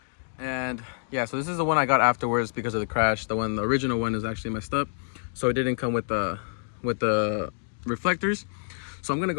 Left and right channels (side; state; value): right; silent; digital silence